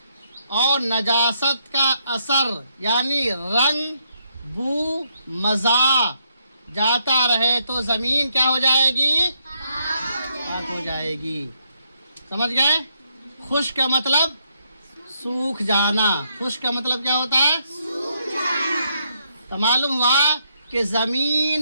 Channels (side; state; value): both; inverted; correlation -0.76